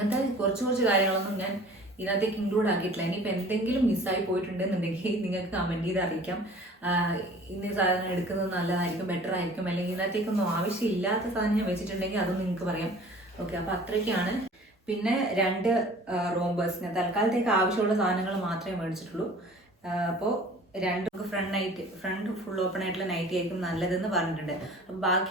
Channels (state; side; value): normal; both; correlation 0.47